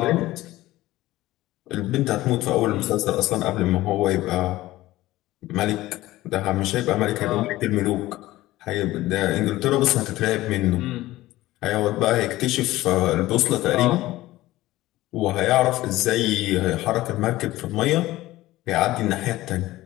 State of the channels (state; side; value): quieter; right; 16.9 dB